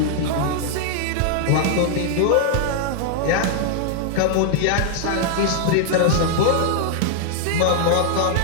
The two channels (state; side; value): different; both; correlation 0.00